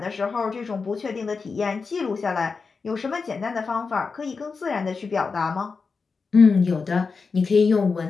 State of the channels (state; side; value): quieter; right; 4.8 dB